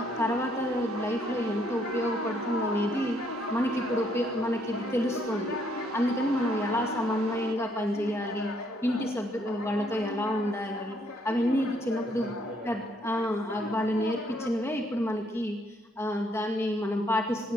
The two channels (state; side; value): normal; both; correlation 0.69